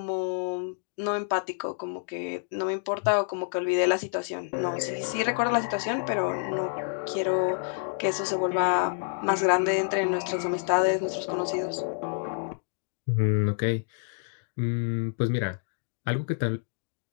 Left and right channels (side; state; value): right; silent; digital silence